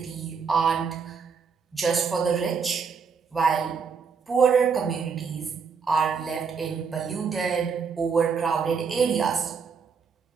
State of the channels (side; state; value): left; quieter; 5.8 dB